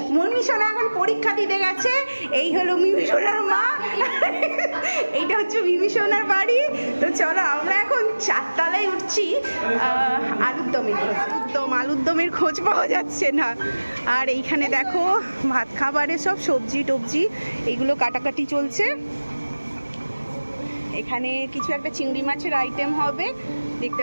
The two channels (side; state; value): both; inverted; correlation -1.00